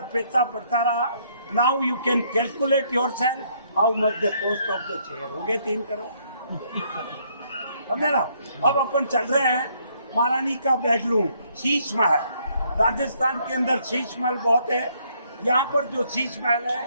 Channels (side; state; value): both; inverted; correlation -0.68